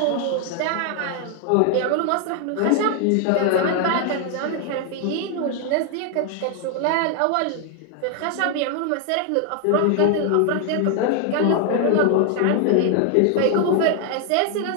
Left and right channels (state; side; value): different; both; correlation 0.00